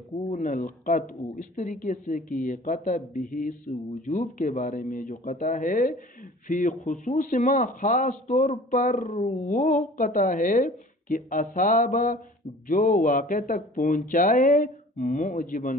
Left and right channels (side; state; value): both; normal; correlation 0.46